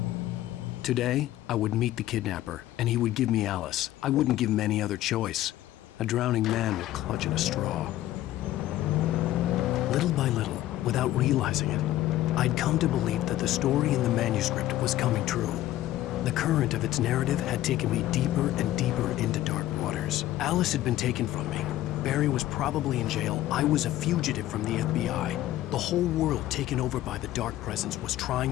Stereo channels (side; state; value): right; quieter; 14.4 dB